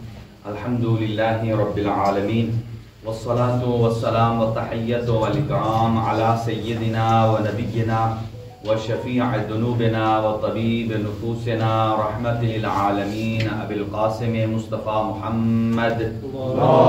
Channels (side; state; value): both; identical; correlation 1.00